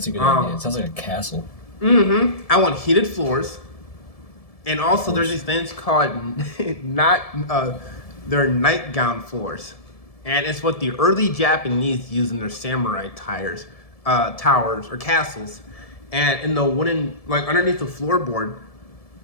a good idea. It sounds like a castle. Mm-hmm. I want heated floors. And also there's these things called they're nightgown floors. And it's what the early Japanese used in their samurai towers or castles. And in the wooden, like underneath the floorboard,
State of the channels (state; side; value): late; right; 1.7 ms